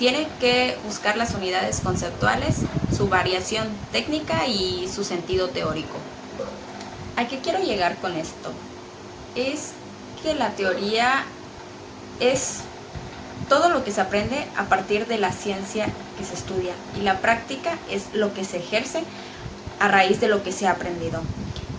que buscar las unidades conceptuales, su variación técnica y su sentido teórico. ¿A qué quiero llegar con esto? Es que la teoría es todo lo que se aprende a partir de la ciencia que se estudia, y la práctica es lo que se ejerce a raíz de lo que se ha aprendido.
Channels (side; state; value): both; identical; correlation 1.00